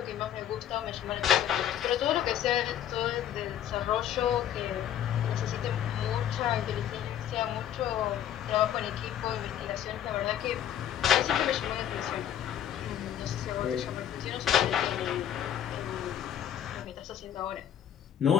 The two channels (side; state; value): right; quieter; 10.4 dB